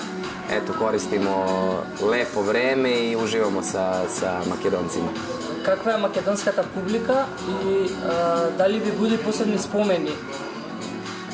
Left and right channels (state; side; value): identical; both; correlation 1.00